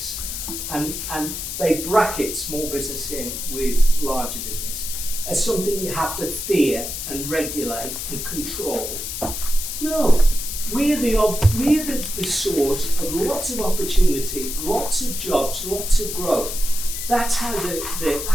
and they bracket small business in with larger business as something you have to fear and regulate and control. No, we're the source of lots of opportunity, lots of jobs, lots of growth. That's how the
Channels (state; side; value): noise; left; hiss, 5 dB below the sound